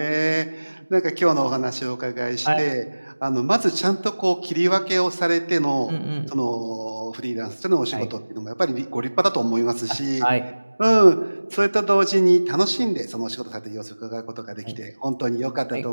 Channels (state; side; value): inverted; both; correlation -1.00